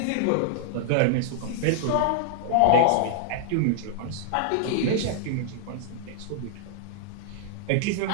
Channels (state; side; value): different; both; correlation -0.01